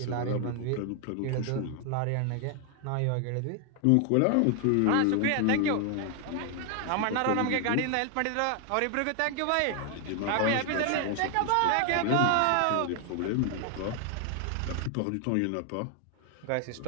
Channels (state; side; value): different; both; correlation 0.00